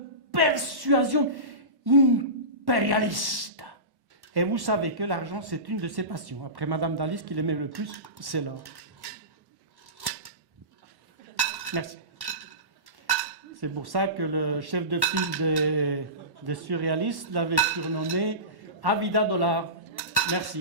persuasion impérialiste. Et vous savez que l'argent, c'est une de ses passions. Après Madame Dali, ce qu'il aimait le plus, c'est l'or. Merci. C'est pour ça que le chef de file des surréalistes l'avait surnommé Avida Dollar.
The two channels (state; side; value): late; left; 1.1 ms